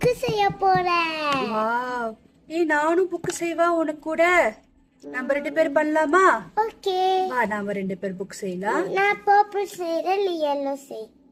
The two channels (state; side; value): identical; both; correlation 1.00